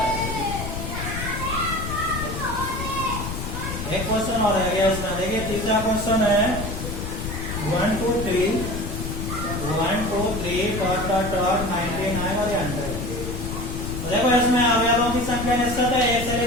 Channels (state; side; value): noise; left; rumble, 5 dB below the sound